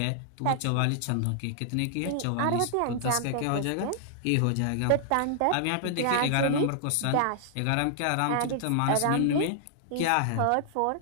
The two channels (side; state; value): both; different; correlation -0.01